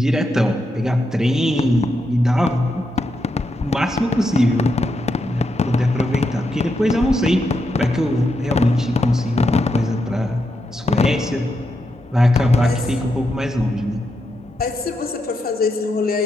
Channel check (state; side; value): normal; both; correlation 0.83